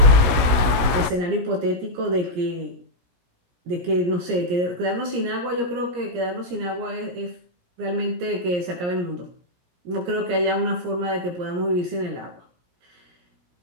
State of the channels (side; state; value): left; late; 16 ms